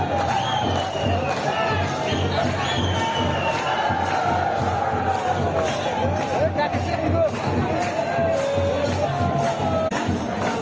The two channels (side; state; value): both; identical; correlation 1.00